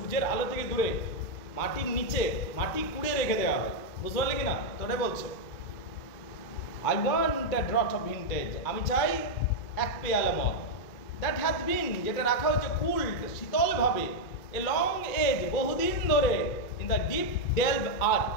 আলো থেকে দূরে মাটির নিচে, মাটি কুড়ে রেখে দেওয়া হয়, বুঝতে পারলে কিনা? তো ওটাই বলছে I want a drought of vintage, আমি চাই এক পেয়ালা মদ। দ্যাট হ্যাথ বিন, যেটা রাখা হয়েছে কুলড, শীতল ভাবে, এ লং এজ, বহুদিন ধরে, ইন দ্য ডিপ ডেলভ আর্থ,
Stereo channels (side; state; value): right; late; 2.4 ms